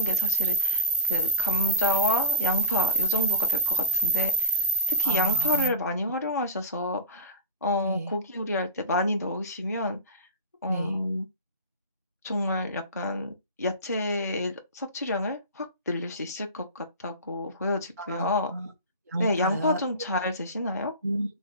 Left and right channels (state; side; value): inverted; both; correlation -0.34